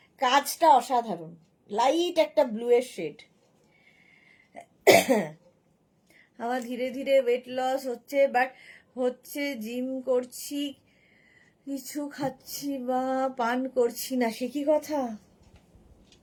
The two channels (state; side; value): identical; both; correlation 1.00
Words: কাজটা অসাধারণ, লাইট একটা ব্লু এর শেড। আমার ধীরে ধীরে ওয়েট লস হচ্ছে, বাট হচ্ছে জিম করছি, কিছু খাচ্ছি বা পান করছি না, সে কি কথা?